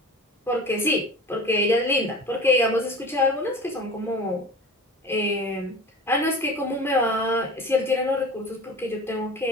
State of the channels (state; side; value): normal; both; correlation 0.37